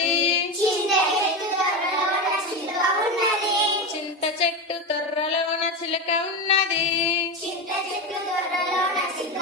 చింత చెట్టు తొర్రలోన చిలక ఉన్నది.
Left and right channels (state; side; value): normal; both; correlation 0.18